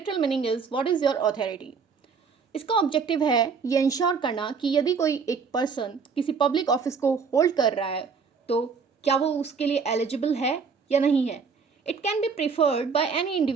meaning is what is your authority. इसका ऑब्जेक्टिव है ये इंश्योर करना कि यदि कोई एक पर्सन किसी पब्लिक ऑफिस को होल्ड कर रहा है तो क्या वो उसके लिए एलिजिबल है या नहीं है. It can be preferred by any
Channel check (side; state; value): left; quieter; 5.6 dB